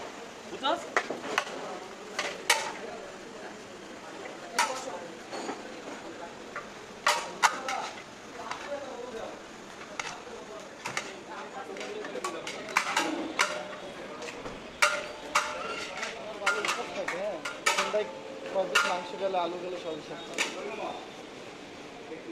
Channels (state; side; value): identical; both; correlation 1.00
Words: বুঝছস? মাংস গেলে আলু গেলে সব